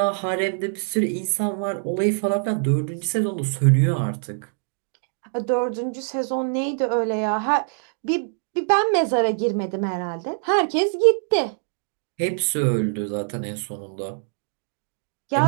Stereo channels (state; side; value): silent; left; digital silence